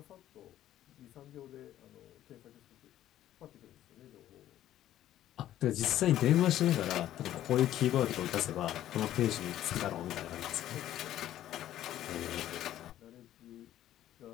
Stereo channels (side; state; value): right; quieter; 12.7 dB